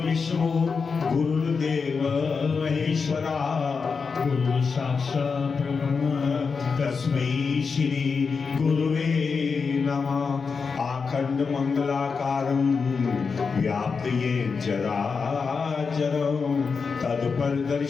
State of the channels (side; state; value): right; quieter; 5.2 dB